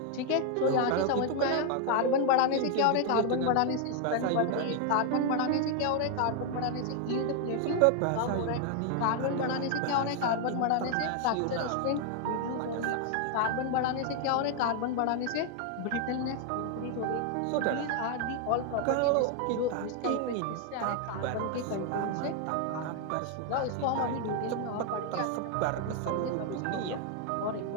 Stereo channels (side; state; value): both; different; correlation 0.00